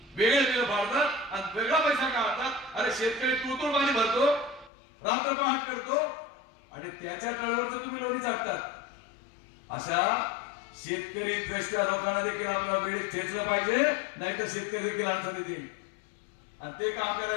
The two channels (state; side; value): drops out; right; at 4.7 s